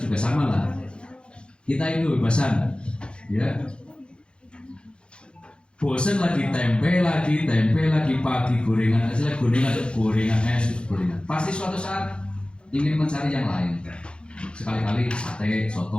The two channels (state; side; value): late; right; 0.055 ms